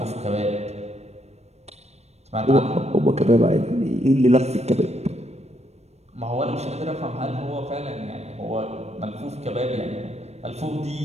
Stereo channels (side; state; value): left; late; 0.31 ms